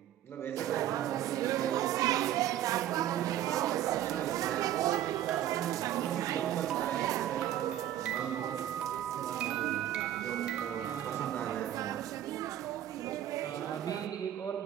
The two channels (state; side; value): quieter; left; 11.8 dB